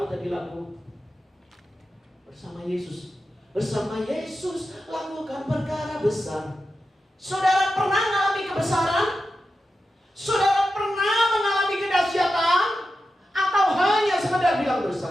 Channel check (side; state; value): both; normal; correlation 0.90